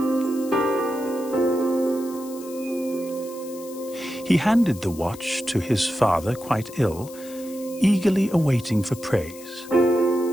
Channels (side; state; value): left; noise; hiss, 18 dB below the sound